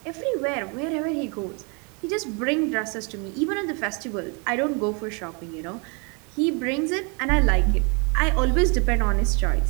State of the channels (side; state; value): left; quieter; 33.6 dB